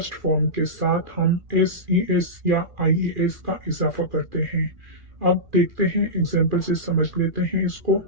फॉर्म के साथ हम एस ई एस या आई ई एस का इजाफा करते हैं। अब देखते हैं, एग्जाम्पल से समझ लेते हैं इसको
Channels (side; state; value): left; late; 2.4 ms